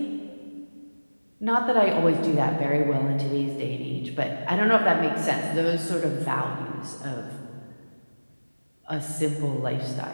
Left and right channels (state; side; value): inverted; both; correlation -1.00